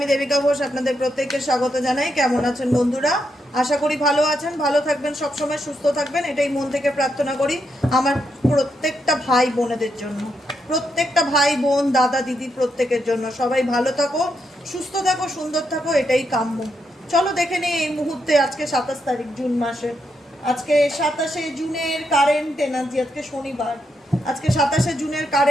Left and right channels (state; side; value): normal; both; correlation 0.81